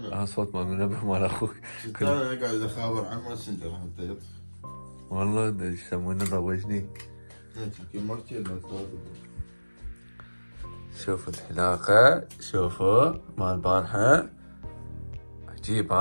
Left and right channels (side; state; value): both; inverted; correlation -1.00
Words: صوت مال المنبه مال اخوك. انا قاعد اخابر عن ماسنجر حتى يطفي. والله ايش يسمونه ضوجني. يمكن ما كثير شوفوا الحلاقة، شوفوا مال البارحة عجيب